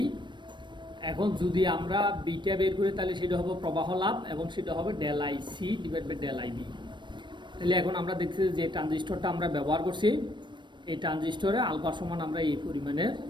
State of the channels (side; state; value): left; late; 0.22 ms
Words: এখন যদি আমরা বিটা বের করি, তাহলে সেটা হবে প্রবাহ লাভ, এবং সেটা হবে del I C divide by del I B. তাহলে এখন আমরা দেখছি যে ট্রানজিস্টরটা আমরা ব্যবহার করছি, এই ট্রানজিস্টরে আলফা সমান আমরা এই পরিমাণের